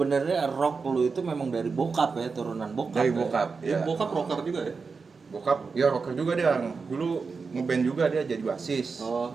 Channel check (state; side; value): quieter; left; 4.8 dB